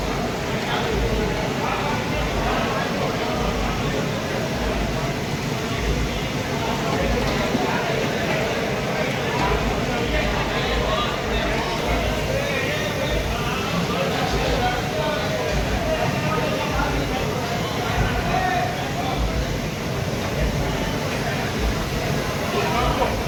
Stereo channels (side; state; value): both; identical; correlation 1.00